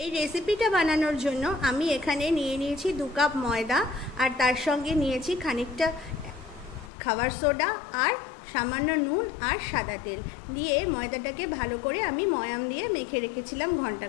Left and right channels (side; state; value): right; drops out; at 6.9 s